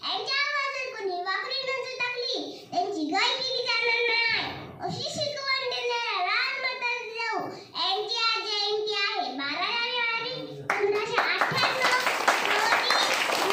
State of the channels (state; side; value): identical; both; correlation 1.00